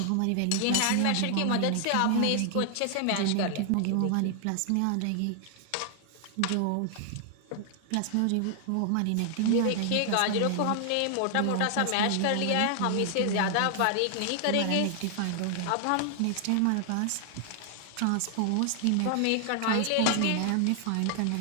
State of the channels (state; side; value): different; both; correlation 0.00